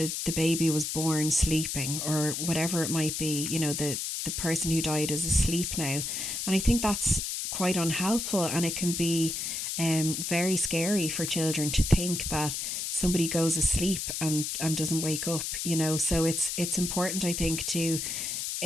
baby was born sleeping, or whatever it might be, the person who died is asleep now. And I think that's quite unhelpful, and it can be very scary for children to think that somebody goes asleep and doesn't wake up, So it's important, I think, to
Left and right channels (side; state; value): left; noise; hiss, 3 dB below the sound